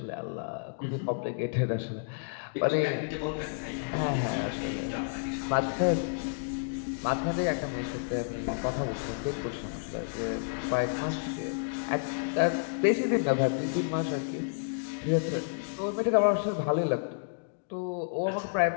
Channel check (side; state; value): right; silent; digital silence